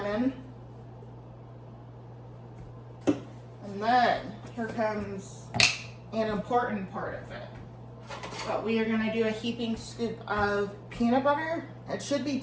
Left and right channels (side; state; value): both; identical; correlation 1.00